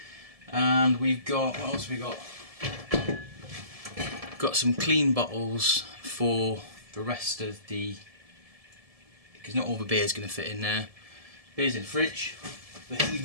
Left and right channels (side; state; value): left; late; 1.7 ms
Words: And we've got, what else have we got? Got some clean bottles for the rest of the, because not all the beer's going to fit in there. Beer's in the fridge.